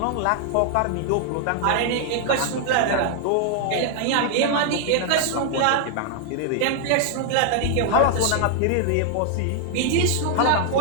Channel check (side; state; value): both; different; correlation 0.00